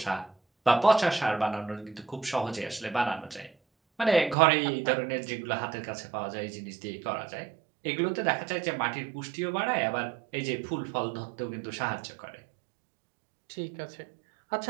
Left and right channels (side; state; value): left; drops out; at 4.4 s